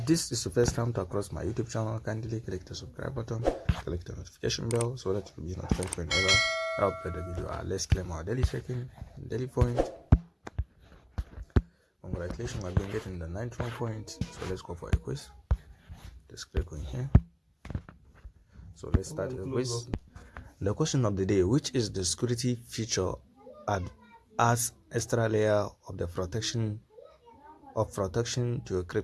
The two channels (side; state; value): both; identical; correlation 1.00